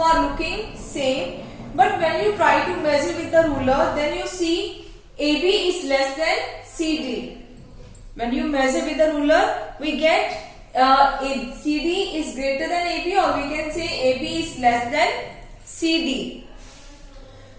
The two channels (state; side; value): identical; both; correlation 1.00